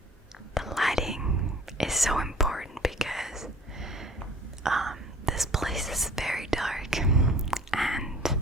the lighting is so important because this place is very dark, and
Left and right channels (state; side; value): normal; both; correlation 0.48